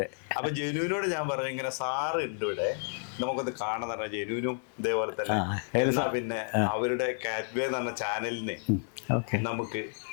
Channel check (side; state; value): right; silent; 56 dB below the other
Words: അപ്പൊ ജനുവിനോട് ഞാൻ പറഞ്ഞു, ഇങ്ങനെ സാറ് ഉണ്ട് ഇവിടെ, നമുക്കൊന്ന് കാണാൻ പറഞ്ഞ. ജനുവിനും ഇതേപോലെ തന്നെ എന്നാ പിന്നെ അവരുടെ കാറ്റ്വേ എന്ന് പറഞ്ഞ ചാനലിന് നമുക്ക്